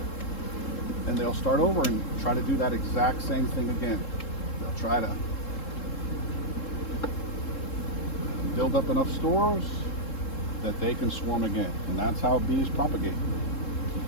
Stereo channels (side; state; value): right; late; 3.7 ms